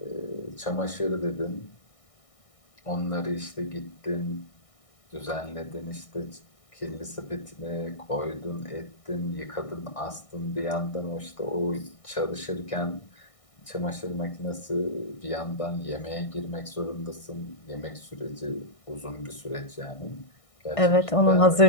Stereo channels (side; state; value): right; late; 1.6 ms